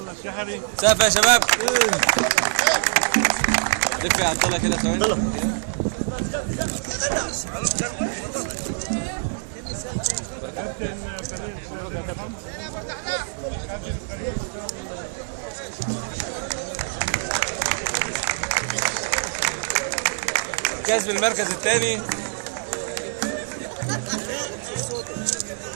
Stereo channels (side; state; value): left; silent; digital silence